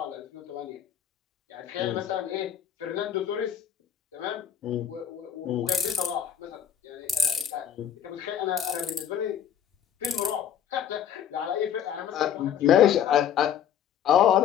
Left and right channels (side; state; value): right; quieter; 9.1 dB